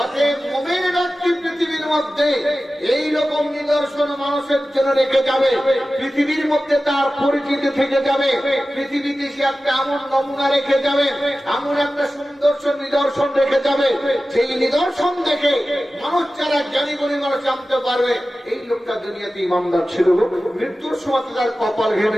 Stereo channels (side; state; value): both; normal; correlation 0.95